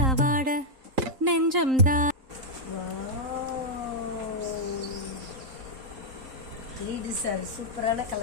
நெஞ்சம் தான். லீடர் சார் சூப்பரான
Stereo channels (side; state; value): left; late; 3.8 ms